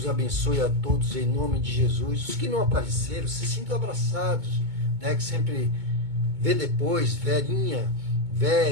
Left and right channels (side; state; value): left; late; 2.2 ms